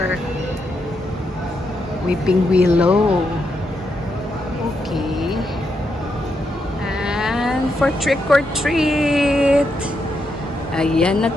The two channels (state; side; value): normal; both; correlation 0.81